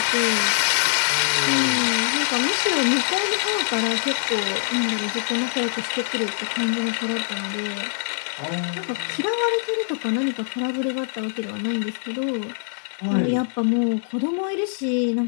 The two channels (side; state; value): right; silent; digital silence